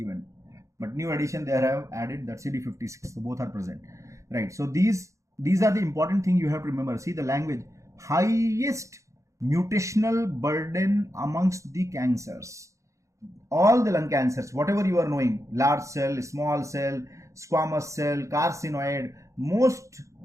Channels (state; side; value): late; left; 0.15 ms